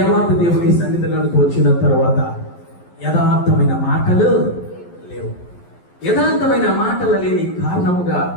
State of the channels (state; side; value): late; right; 11 ms